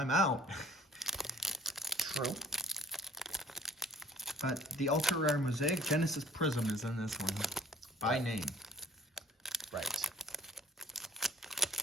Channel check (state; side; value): normal; both; correlation 0.55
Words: out. True. But the ultra rare Mosaic Genesis Prism is in this one. By name. Right.